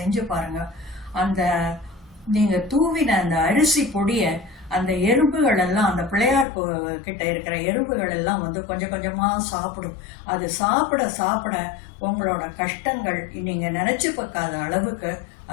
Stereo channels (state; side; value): drops out; right; at 6.5 s